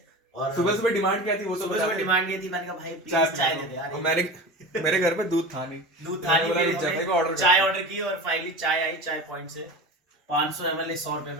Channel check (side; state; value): both; normal; correlation 0.31